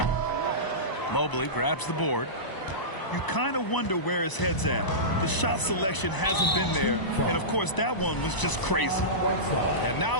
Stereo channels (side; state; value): right; late; 1.0 ms